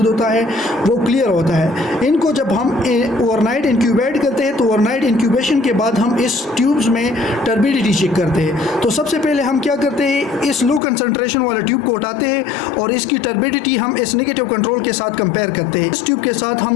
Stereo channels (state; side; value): drops out; right; at 10.8 s